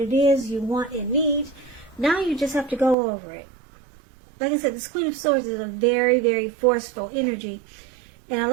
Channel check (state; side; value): drops out; left; at 3.0 s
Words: is you want and need. Now you just have to go over it. Like I said, this Queen of Swords is a very, very forceful energy. And a